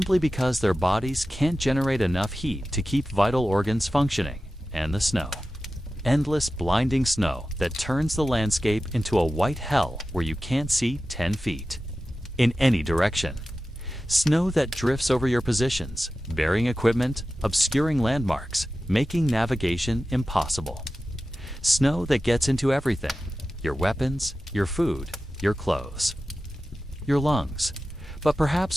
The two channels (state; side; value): normal; both; correlation 0.94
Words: because their bodies can't generate enough heat to keep vital organs functioning, and the snow. Endless blinding snow that turns the landscape into a white hell where you can't see 10 feet in any direction. Snow that drifts over your positions, burying equipment, obscuring landmarks, making navigation impossible. Snow that gets into everything: your weapons, your food, your clothes, your lungs. But